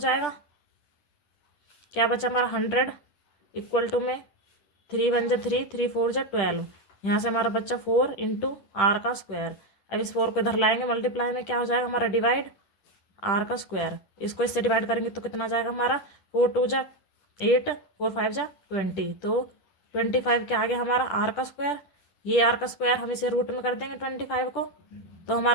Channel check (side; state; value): right; late; 10 ms